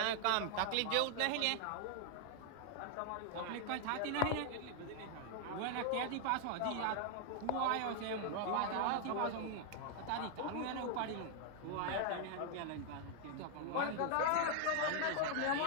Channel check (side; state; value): both; different; correlation 0.00